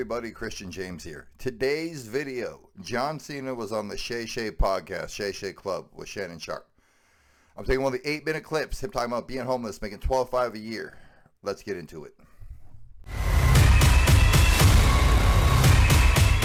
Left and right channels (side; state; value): both; identical; correlation 1.00